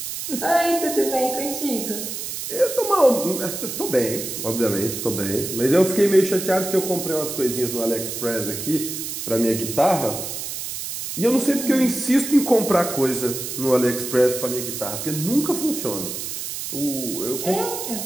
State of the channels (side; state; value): right; noise; hiss, 6 dB below the sound